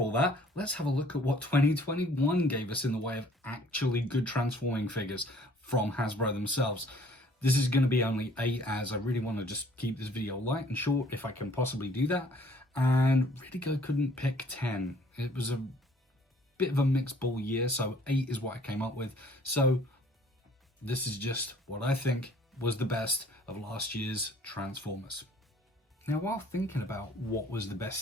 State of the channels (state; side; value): normal; both; correlation 0.57